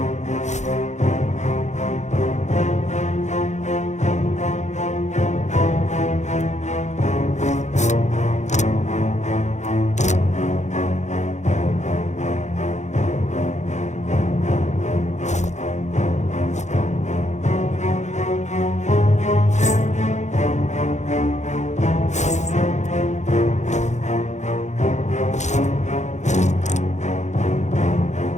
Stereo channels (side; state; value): right; late; 0.34 ms